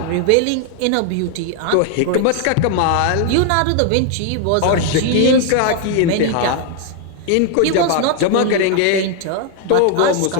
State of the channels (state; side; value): different; both; correlation 0.00